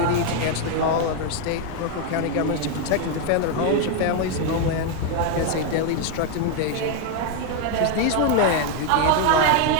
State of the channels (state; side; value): different; both; correlation 0.01